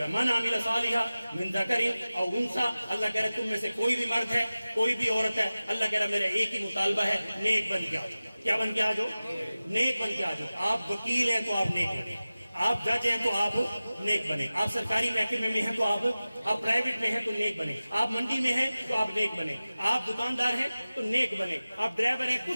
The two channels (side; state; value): both; inverted; correlation -0.97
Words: ہے من عمل صالحا من ذکر او انثی. اللہ کہہ رہا ہے تم میں سے کوئی بھی مرد ہے کوئی بھی عورت ہے, اللہ کہہ رہا ہے میرا ایک ہی مطالبہ ہے نیک بن کے آ جاؤ. کیا بن کے آ جاؤ؟ نیک بن کے آ جاؤ. آپ وکیل ہیں تو آپ نیک بنے, آپ جج ہیں تو آپ نیک بنے, آپ سرکاری محکمے میں ہیں تو آپ پرائیویٹ میں ہیں تو نیک بنے, آپ منڈی میں ہیں تو آپ نیک بنے, آپ دکاندار ہیں تو نیک بنے, آپ ڈرائیور ہیں,